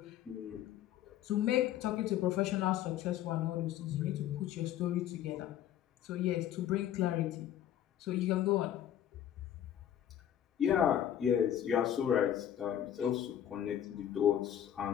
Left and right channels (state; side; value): quieter; right; 10.8 dB